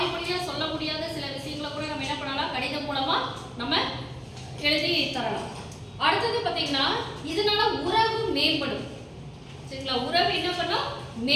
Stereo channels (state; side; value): identical; both; correlation 1.00